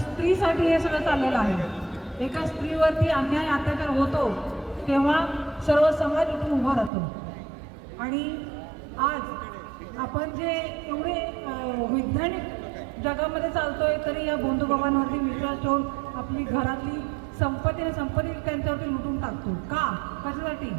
हे सगळं चाललेलं आहे. एका स्त्रीवरती अन्याय अत्याचार होतो तेव्हा सर्व समाज उठून उभा राहतो. आणि आज आपण जे एवढे वैज्ञानिक जगामध्ये चालतोय तरी या बंधुबाबांवरती विश्वास ठेवून आपली घरातली संपत्ती त्यांच्यावरती लुटून टाकतो. का? कशासाठी?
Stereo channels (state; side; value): drops out; left; at 6.9 s